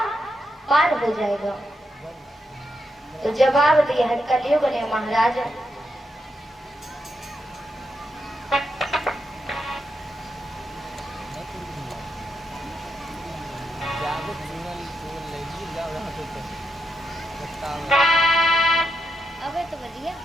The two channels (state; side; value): normal; both; correlation 0.83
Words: पार हो जाएगा। तो जवाब दिया है कलयुग ने महाराज अबे तो बढ़िया